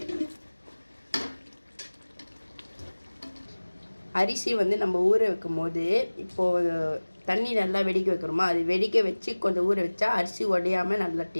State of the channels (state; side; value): inverted; both; correlation -1.00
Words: அரிசி நம்ம ஊற வைக்கும் போது இப்போது தண்ணி நல்லா வெடிக்க வைக்கிறோமா, அது வெடிக்க வச்சு கொஞ்சம் ஊற வச்சா அரிசி உடையாமல் நல்லா